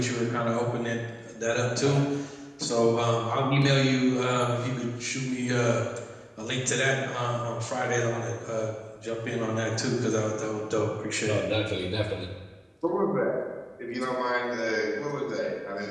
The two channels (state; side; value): identical; both; correlation 1.00